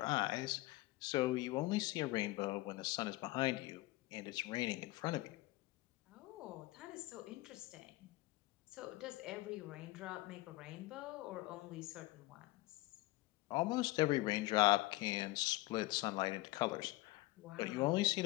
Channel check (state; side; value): quieter; right; 19.9 dB